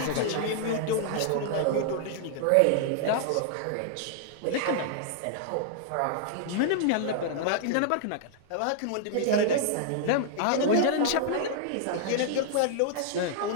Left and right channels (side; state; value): both; different; correlation -0.01